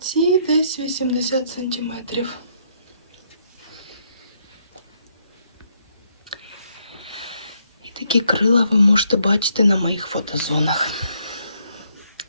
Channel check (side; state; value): both; inverted; correlation -0.72